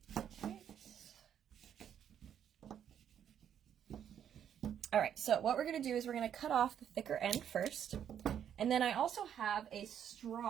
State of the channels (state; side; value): quieter; left; 9.2 dB